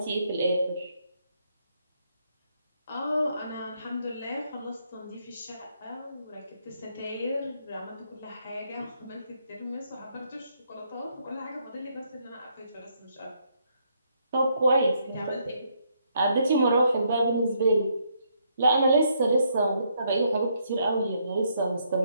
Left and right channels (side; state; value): both; inverted; correlation -0.73